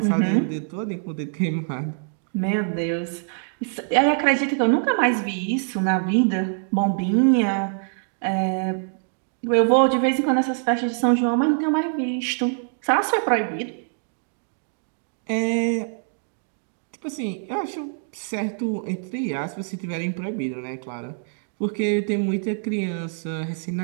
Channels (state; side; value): silent; left; digital silence